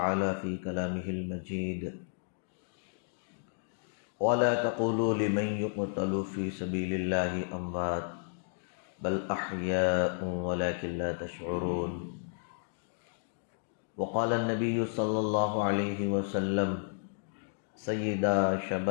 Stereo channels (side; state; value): right; silent; digital silence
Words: فی کلامہ المجید ولا تقولوا لمن يقتل في سبيل الله اموات بل احیاء ولكن لا تشعرون وقال النبی صلی اللہ علیہ وسلم سیدا